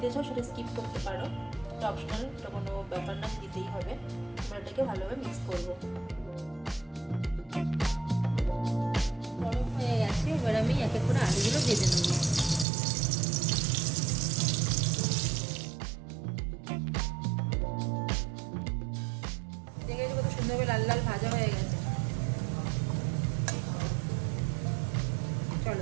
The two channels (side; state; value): left; drops out; at 12.7 s